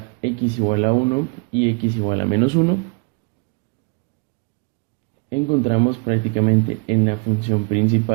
x igual a 1 y x igual a menos 1, encontramos prácticamente en la función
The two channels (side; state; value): left; quieter; 30.9 dB